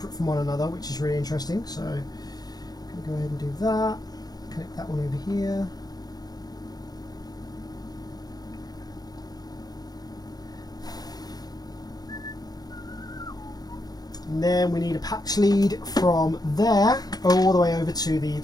from one another, which is really interesting. So I'm going to go ahead and do that, connect that one over here. And then we need a patch lead from there all the way over to the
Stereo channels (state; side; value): late; right; 0.19 ms